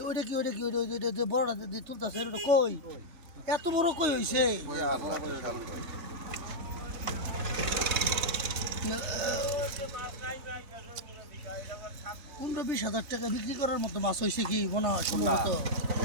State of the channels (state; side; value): late; left; 3.3 ms